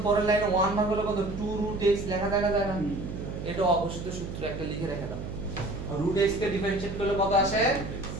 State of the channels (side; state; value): right; noise; hum, 7 dB below the sound